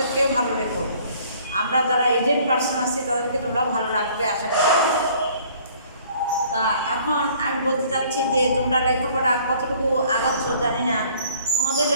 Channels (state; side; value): inverted; both; correlation -0.56